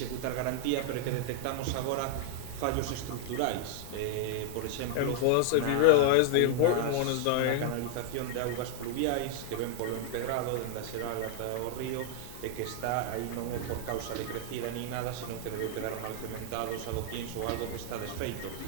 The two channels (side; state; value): both; different; correlation 0.00